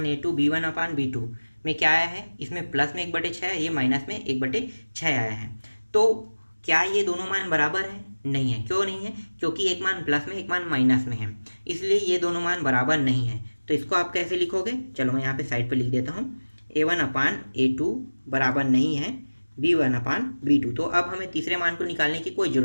b1/b2 में क्या आया है, इसमें प्लस में 1/6 है, ये माइनस में 1/6 आया है। तो क्या ये दोनों मान बराबर है, नहीं है। क्यों नहीं है, क्योंकि एक मान प्लस में एक मान माइनस में है, इसलिए ये दोनों मान बराबर नहीं है। तो इसको आप कैसे लिखोगे, चलो मैं यहाँ पे साइड पे लिख देता हूँ, a1/a2 बराबर नहीं है b1/b2। तो अब हमें तीसरे मान को निकालने की कोई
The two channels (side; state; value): both; inverted; correlation -1.00